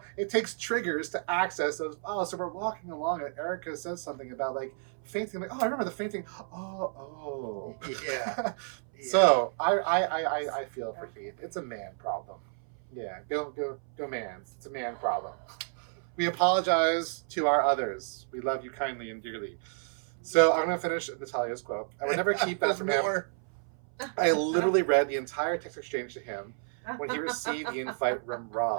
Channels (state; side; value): silent; left; 57 dB below the other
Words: it takes triggers to access those files. So we're walking along and Erica says something about like fainting. I'm like, oh, I remember the fainting. Oh. Yeah. So I feel for Heath. It's a man problem. Yeah, go man. It's a man problem. We apologize to our others. We love you kindly and dearly. So I'm gonna finish Natalia's quote. I would never keep that from him. more. I literally read the entire text exchange to him when he received the invite from